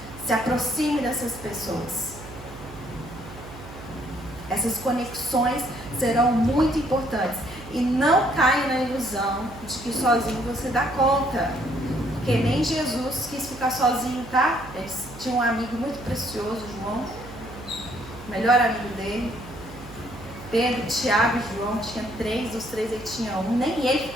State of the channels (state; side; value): noise; right; hum, 16 dB below the sound